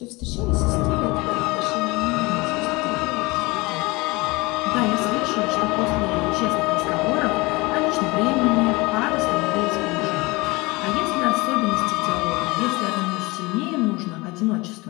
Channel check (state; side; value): quieter; right; 23.7 dB